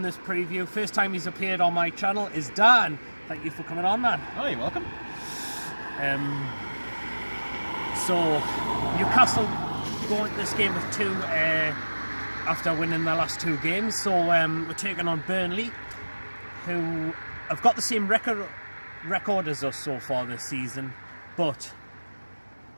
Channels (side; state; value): both; inverted; correlation -1.00